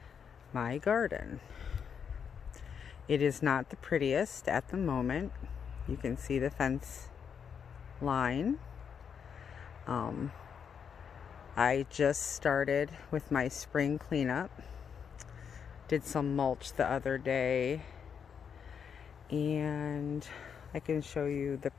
my garden. It is not the prettiest at the moment. You can see the fence line. I just started with my spring cleanup. Did some mulch the other day, and I can show you the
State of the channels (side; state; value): right; quieter; 7.1 dB